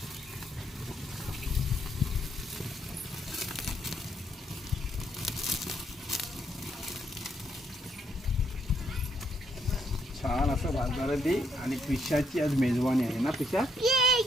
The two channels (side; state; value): both; normal; correlation 0.74